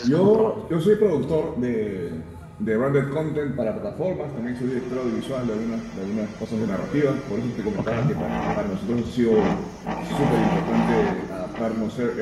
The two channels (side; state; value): both; identical; correlation 1.00